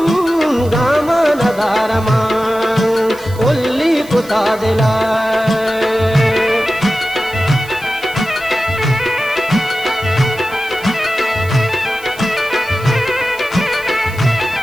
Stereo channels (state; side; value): noise; right; hiss, 20 dB below the sound